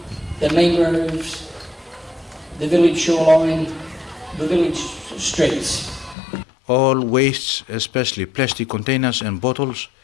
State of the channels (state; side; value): drops out; right; at 6.2 s